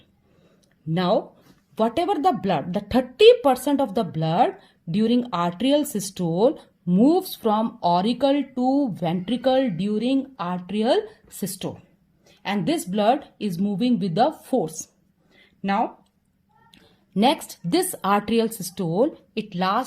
Now, whatever the blood, the 30% of the blood during atrial systole moves from auricle to ventricle during atrial systole. And this blood is moving with the force. Now, next, this atrial systole, it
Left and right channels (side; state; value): both; identical; correlation 1.00